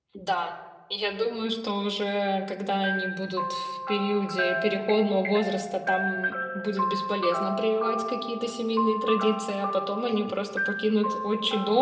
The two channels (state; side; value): identical; both; correlation 1.00